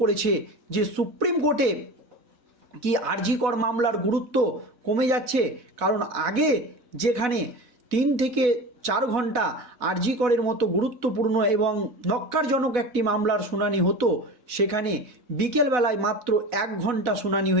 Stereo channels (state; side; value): late; left; 4.1 ms